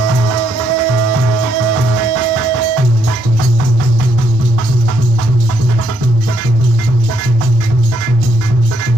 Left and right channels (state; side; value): normal; both; correlation 0.74